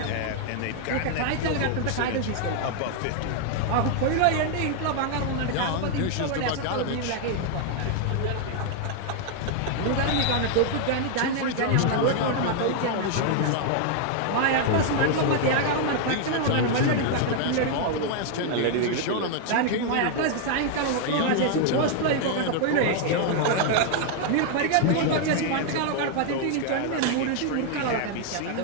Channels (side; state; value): both; different; correlation 0.00